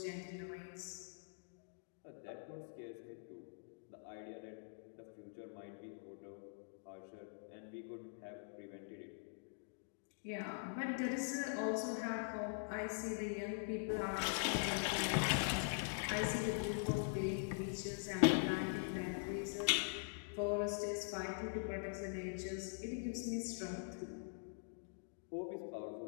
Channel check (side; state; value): right; silent; digital silence